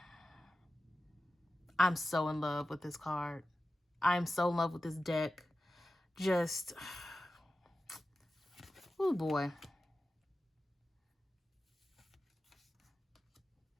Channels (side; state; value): both; normal; correlation 0.93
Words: I'm so in love with this card. I'm so in love with this deck. Just, oh boy.